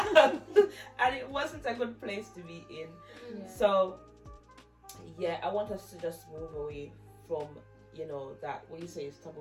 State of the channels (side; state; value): both; identical; correlation 1.00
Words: And it wasn't a good place to be in. Yeah. So yeah, I want us to just move away from, you know, that what you say is